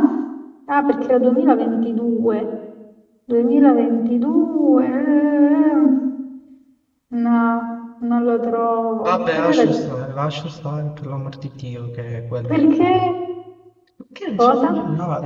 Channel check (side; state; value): both; identical; correlation 1.00